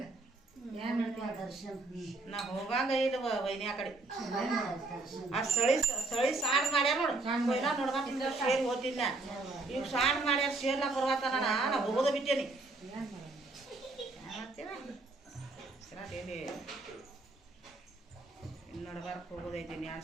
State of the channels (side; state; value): left; quieter; 3.3 dB